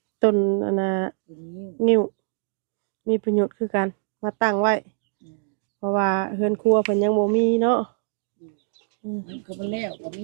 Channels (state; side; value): silent; left; digital silence